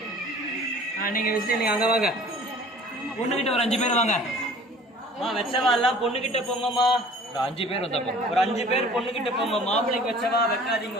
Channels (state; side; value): normal; both; correlation 0.48